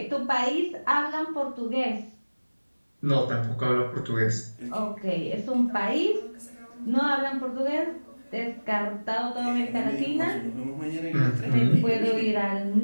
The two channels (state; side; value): inverted; both; correlation -1.00